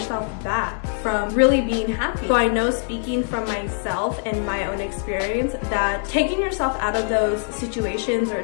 back from really being happy. So I know, speaking from myself and my own experience, that taking yourself out of those situations or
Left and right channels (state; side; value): silent; right; 64 dB below the other